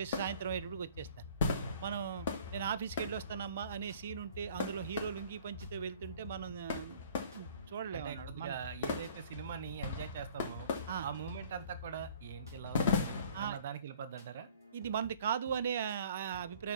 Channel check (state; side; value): inverted; both; correlation -0.54